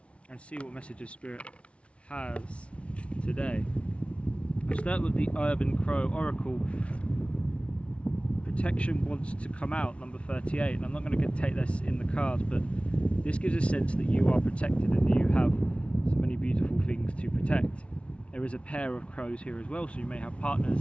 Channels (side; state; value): right; late; 0.061 ms